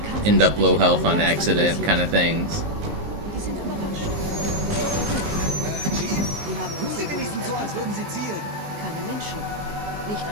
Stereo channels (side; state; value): left; late; 19 ms